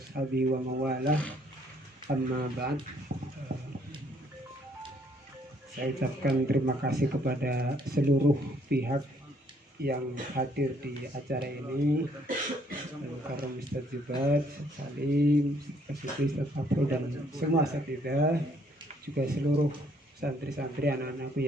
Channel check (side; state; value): both; normal; correlation 0.66